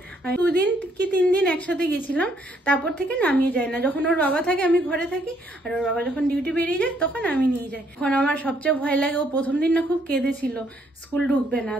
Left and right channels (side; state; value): both; normal; correlation 0.69